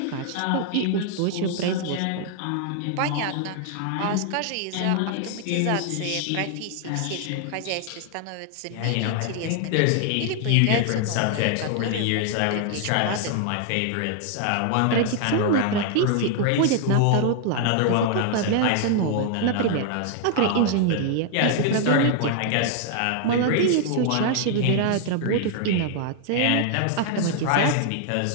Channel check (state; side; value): different; both; correlation 0.00